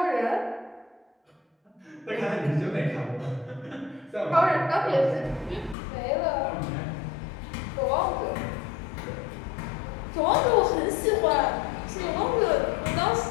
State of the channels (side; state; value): right; drops out; at 5.8 s